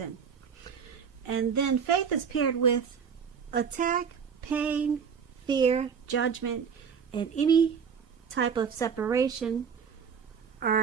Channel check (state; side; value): quieter; left; 6.7 dB